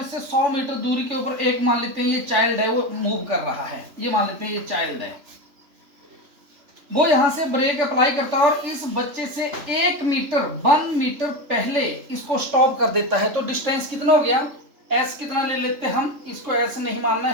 100 मीटर दूरी के ऊपर एक मान लेते हैं ये चाइल्ड है, वो मूव कर रहा है। ये मान लेते हैं ये चाइल्ड है, वो यहां से ब्रेक अप्लाई करता है और इस बच्चे से 1 मीटर पहले इसको स्टॉप कर देता है। तो डिस्टेंस कितना हो गया, s कितना ले लेते हैं हम, इसको s नहीं मानना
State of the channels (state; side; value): late; left; 3.4 ms